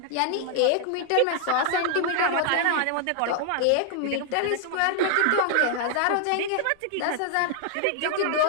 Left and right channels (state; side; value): different; both; correlation 0.00